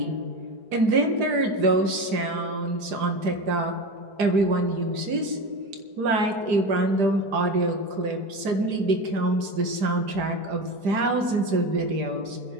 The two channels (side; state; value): left; late; 5.0 ms